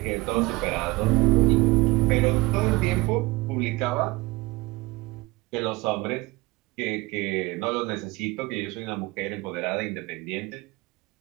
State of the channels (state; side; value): quieter; left; 21.9 dB